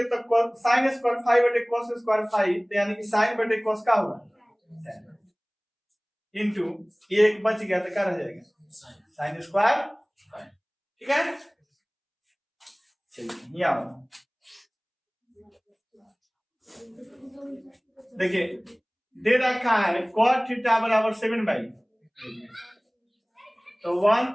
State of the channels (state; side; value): identical; both; correlation 1.00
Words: तो साइन स्क्वायर फाइव बटे cos स्क्वायर फाइव, तो यानी कि साइन बटे cos का होगा इंटू एक बच गया तो क्या रह जाएगा, साइन स्क्वायर, ठीक है। चलिए यहाँ देखिए दे रखा है cot थीटा बराबर 7/, तो 1